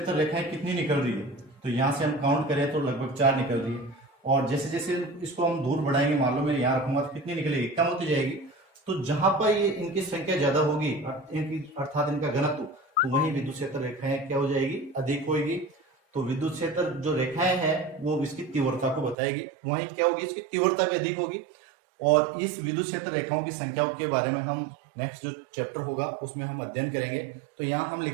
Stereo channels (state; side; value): drops out; left; at 19.2 s